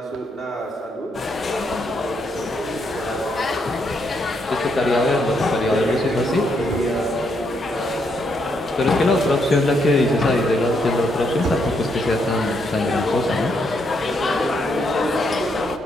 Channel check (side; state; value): both; normal; correlation 0.76